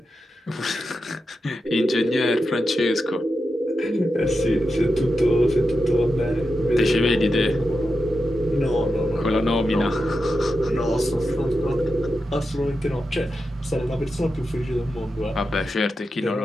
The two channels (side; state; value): both; normal; correlation 0.89